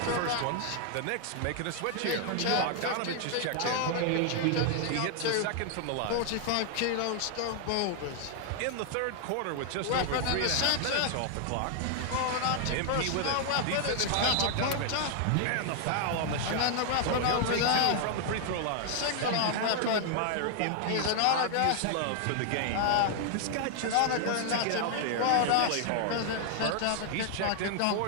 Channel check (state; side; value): different; both; correlation 0.00